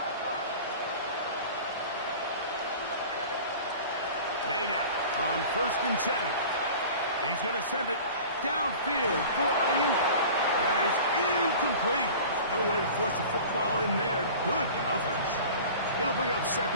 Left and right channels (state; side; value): inverted; both; correlation -0.40